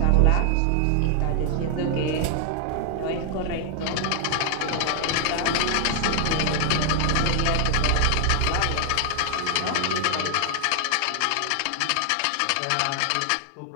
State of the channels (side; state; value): both; different; correlation 0.00